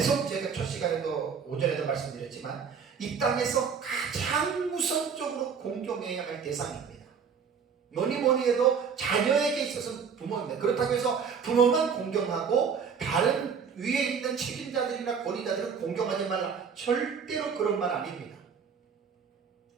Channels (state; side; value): quieter; left; 6.4 dB